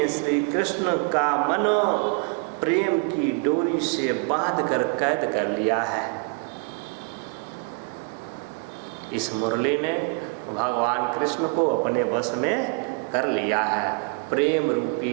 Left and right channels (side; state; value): left; quieter; 34.1 dB